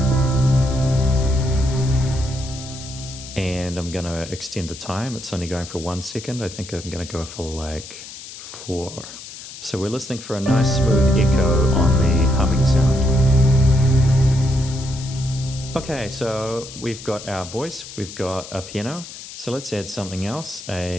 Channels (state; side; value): noise; left; hiss, 13 dB below the sound